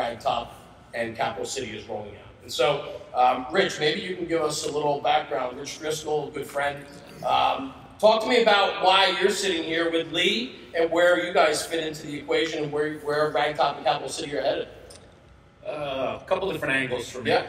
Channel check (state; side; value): identical; both; correlation 1.00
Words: and Capital City is rolling out. And so, Rich, maybe you can give us a little background. Rich Driscoll, a good friend. Talk to me about why you're sitting here with Lee and where you guys fit into the equation and where Ragtop and Capital City are headed. A couple different angles for me.